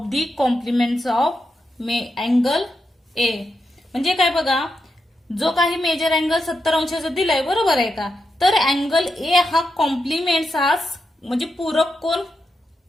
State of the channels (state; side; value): normal; both; correlation 0.86